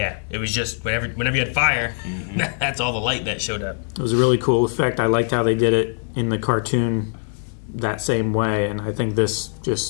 it was just whenever you had fire, that's all the light that showed up. It was a really cool effect. I liked how they did it in the cartoon that same way, and I think this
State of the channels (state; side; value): silent; right; 64 dB below the other